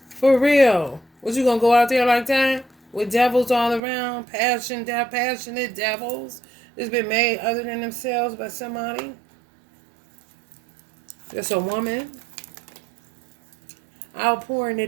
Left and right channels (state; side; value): drops out; left; at 3.8 s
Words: For real. What, you gonna go out there like that? With devils all around? Passionate devils that's been made other than themselves by somebody? That's a woman. Outpouring the